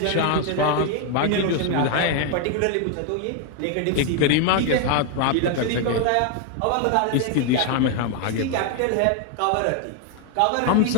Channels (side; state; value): both; different; correlation 0.01